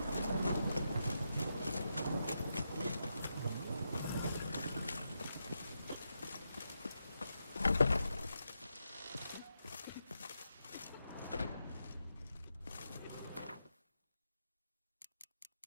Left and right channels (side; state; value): both; inverted; correlation -0.85